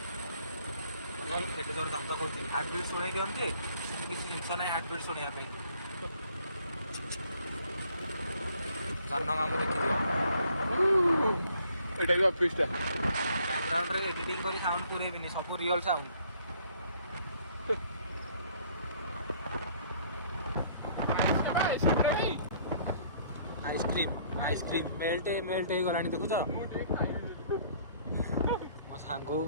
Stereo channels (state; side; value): inverted; both; correlation -0.61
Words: ସେଠି ଜୋର ଦାନ୍ତ କରୁଛି ହାର୍ଟ ବିଟ୍ ଶୁଣେଇ ଦିଅନ୍ତି ସେମିତି କିଛି ଜିନିଷ ନାହିଁ ହାର୍ଟ ବିଟ୍ ଶୁଣିବା ପାଇଁ। ସାନ କାମ ଦେଖିଦିଅ ଏଇଟା ବି ଅଫିସଟା। ବ୍ୟାକଗ୍ରାଉଣ୍ଡରେ ଏଡିଟିଂ କରି ସାଉଣ୍ଡ ପୁରେଇବିନି ସବୁ ରିଅଲ ସାଉଣ୍ଡ। ଆଇସ୍କ୍ରିମ୍ ମେଲ୍ଟ ହେଇଗଲାଣି ଦେଖୁଛ। ମୁଁ ଟିକେ ଖାଇବି। ମୋ ସାଙ୍ଗକୁ